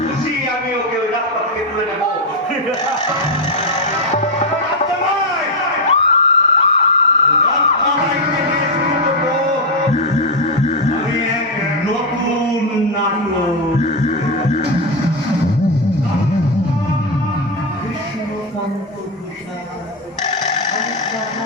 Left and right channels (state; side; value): normal; both; correlation 0.05